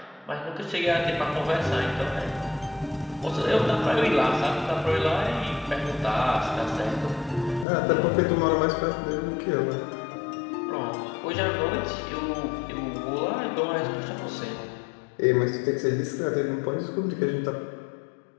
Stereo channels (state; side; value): drops out; right; at 7.7 s